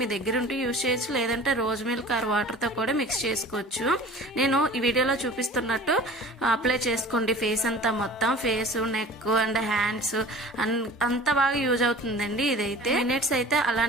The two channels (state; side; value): normal; both; correlation 0.42